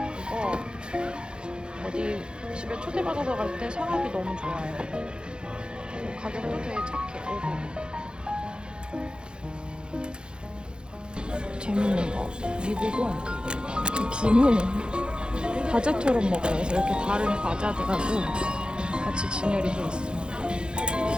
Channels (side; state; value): left; late; 0.050 ms